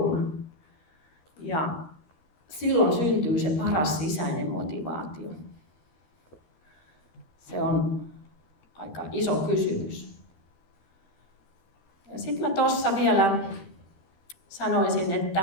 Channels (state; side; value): late; right; 13 ms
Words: Ja silloin syntyy se paras sisäinen motivaatio. Se on aika iso kysymys. Ja sitten mä tuossa vielä sanoisin,